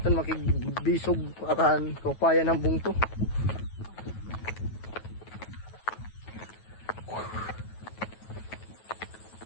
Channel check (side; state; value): right; late; 9.3 ms